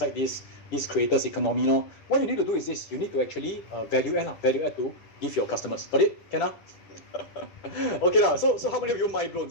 this creators economy. What you need to do is this. You need to actually value add to give your customers. Got it? Can Okay So how many of you mind blown?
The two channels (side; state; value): right; late; 10 ms